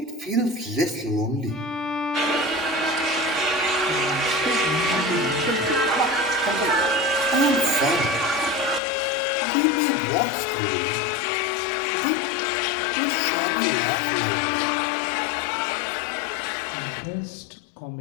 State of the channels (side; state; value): right; drops out; at 8.8 s